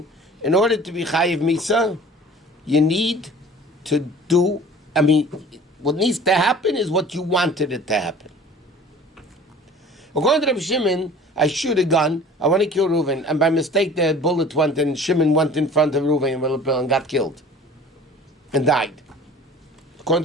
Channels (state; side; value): normal; both; correlation 0.45